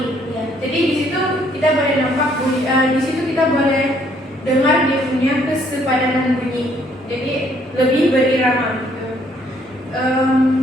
Ya. Jadi di situ kita boleh nampak di situ kita boleh dengar dia punya kesepadanan bunyi. Jadi lebih berirama.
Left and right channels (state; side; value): normal; both; correlation 0.66